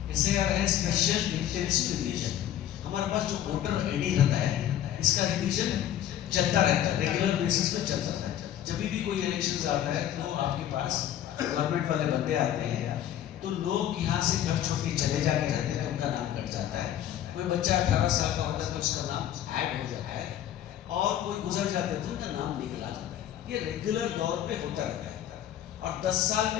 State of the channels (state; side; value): quieter; right; 11.4 dB